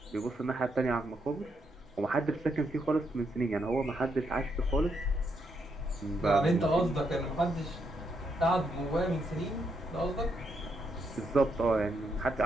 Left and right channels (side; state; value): both; normal; correlation 0.78